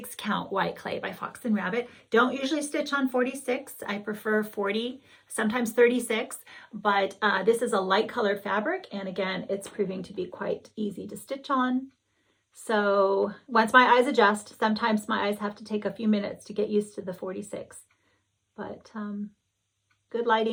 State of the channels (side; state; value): both; identical; correlation 1.00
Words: count white clay by Fox and Rabbit. Don't usually stitch on 46. I prefer 40, sometimes 36, but this is a light colored fabric. And again, it's proving to be quite easy to stitch on. So once my eyes adjust, sometimes my eyes have to take a few minutes to get used to the 46, but good